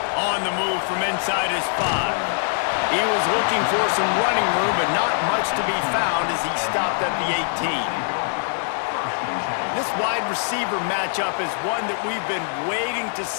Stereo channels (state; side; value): silent; right; digital silence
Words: On the move from inside his 5. He was looking for some running room, but not much to be found as he stopped at the 18. This wide receiver matchup is one that we've been waiting to